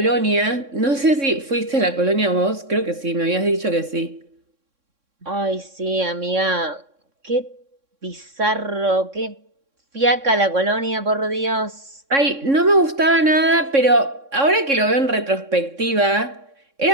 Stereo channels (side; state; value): left; late; 3.6 ms